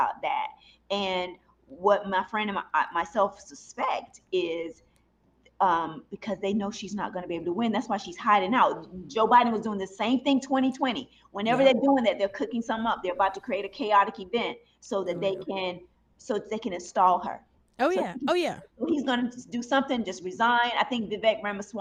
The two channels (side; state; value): both; identical; correlation 1.00